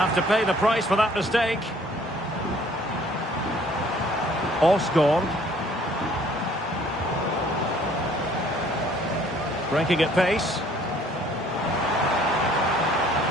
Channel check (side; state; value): both; normal; correlation 0.58